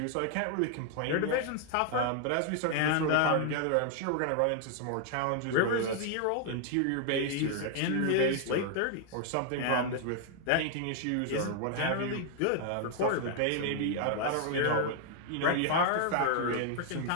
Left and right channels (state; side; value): different; both; correlation 0.00